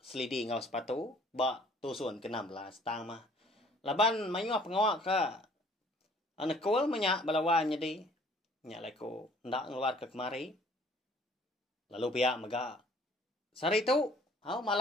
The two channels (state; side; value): normal; both; correlation 0.56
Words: selidi ngau sepatu ba tusun ke-16 tang mah. Laban mayuah pengawak ke anak kul menyak balawan jadi nya leko ndak ngeluar ke kemari lalu pihak mega sari tu